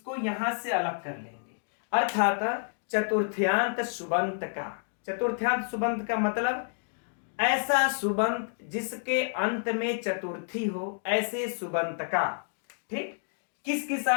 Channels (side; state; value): right; silent; digital silence